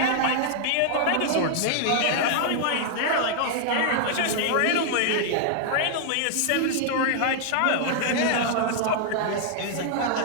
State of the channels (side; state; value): both; different; correlation -0.01